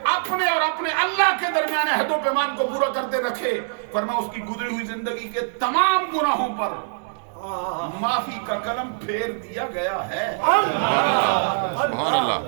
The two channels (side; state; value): left; silent; digital silence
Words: اپنے اور اپنے اللہ کے درمیان عہد و پیمان کو پورا کرتے رکھے, فرمایا اس کی گزری ہوئی زندگی کے تمام گناہوں پر معافی کا قلم پھیر دیا گیا ہے. سبحان اللہ.